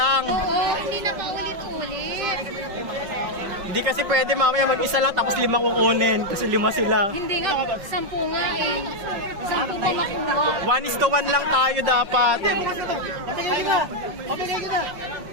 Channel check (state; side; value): late; left; 5.5 ms